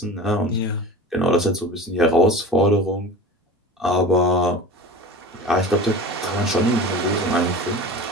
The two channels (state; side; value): normal; both; correlation 0.35